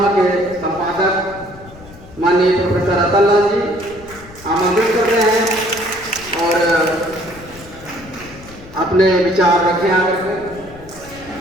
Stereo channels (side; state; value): left; noise; rumble, 20 dB below the sound